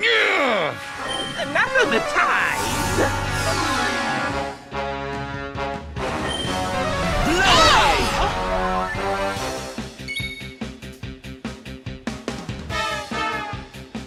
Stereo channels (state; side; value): identical; both; correlation 1.00